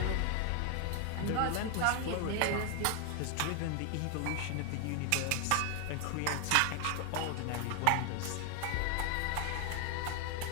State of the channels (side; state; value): both; different; correlation 0.00